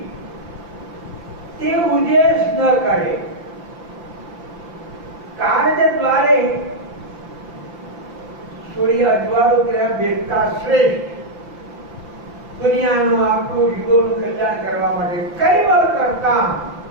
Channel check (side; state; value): left; late; 5.9 ms